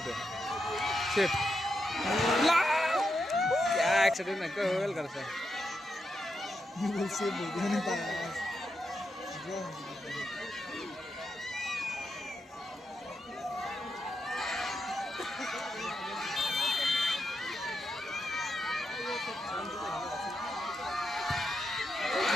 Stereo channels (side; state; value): both; normal; correlation 0.84